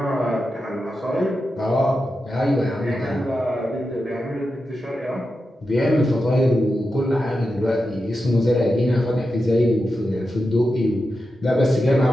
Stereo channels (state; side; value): normal; both; correlation 0.90